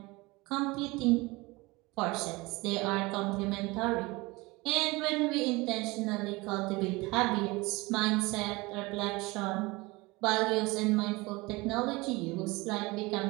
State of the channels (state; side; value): quieter; left; 23.1 dB